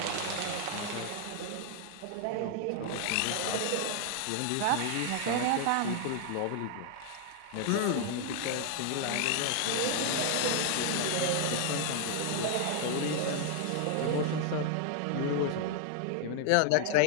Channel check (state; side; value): different; both; correlation 0.00